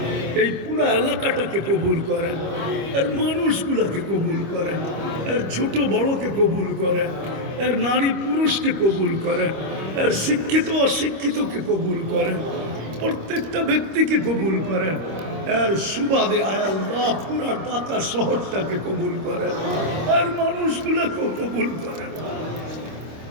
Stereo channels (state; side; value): late; left; 25 ms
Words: এই পুরো এলাকাটাকে কবুল করেন, এর মানুষগুলোকে কবুল করেন, এর ছোট বড়কে কবুল করেন, এর নারী পুরুষকে কবুল করেন, এর শিক্ষিত অশিক্ষিতকে কবুল করেন, প্রত্যেকটা ব্যক্তিকে কবুল করেন। এর সুবাদে আল্লাহ পুরা ঢাকা শহরটাকে কবুল করেন, আর মানুষগুলোকেও কবুল করেন,